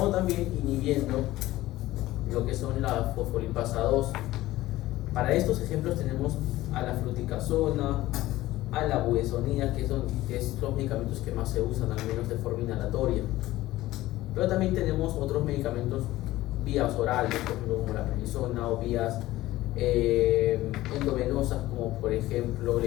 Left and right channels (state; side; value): quieter; right; 16.5 dB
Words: también inhibiendo lo que son la fosfolipasa 2 Para estos ejemplos tenemos a la fluticasona, a la budesonida, que es los medicamentos que más se usan, al menos de forma inhalatoria. Pero también tenemos otros medicamentos vías orales, por ejemplo como la prednisona, o vías endovenosas, como por ejemplo la